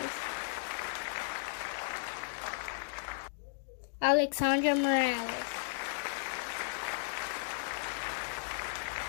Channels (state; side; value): silent; right; digital silence